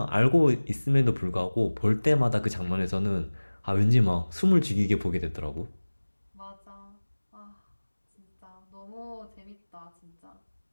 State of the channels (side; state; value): both; inverted; correlation -1.00